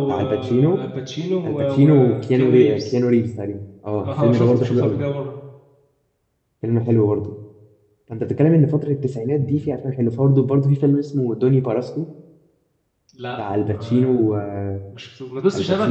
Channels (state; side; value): identical; both; correlation 1.00